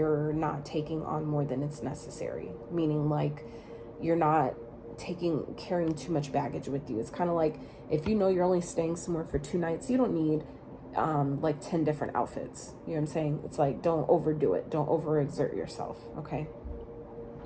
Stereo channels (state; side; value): identical; both; correlation 1.00